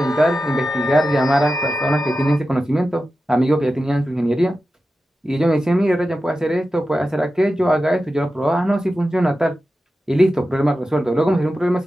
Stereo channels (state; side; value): normal; both; correlation 0.92